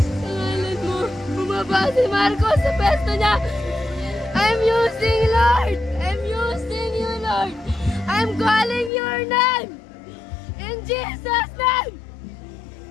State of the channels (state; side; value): drops out; right; at 8.9 s